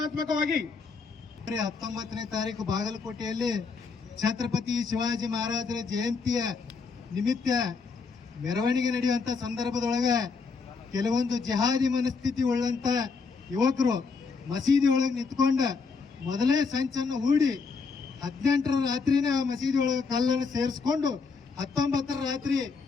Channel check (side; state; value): right; quieter; 4.9 dB